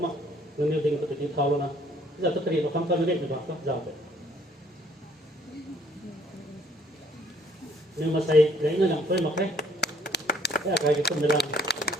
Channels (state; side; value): normal; both; correlation 0.62